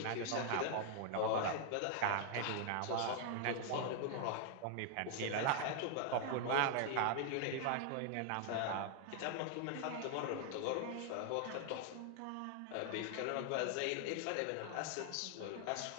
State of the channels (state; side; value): different; both; correlation 0.00